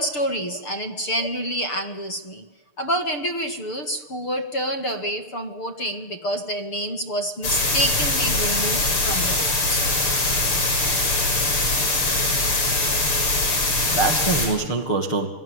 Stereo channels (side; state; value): right; late; 6.7 ms